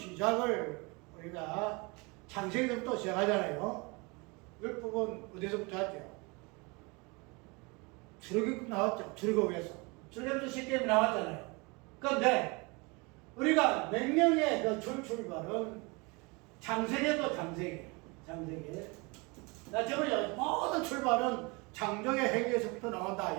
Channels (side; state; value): left; quieter; 27.9 dB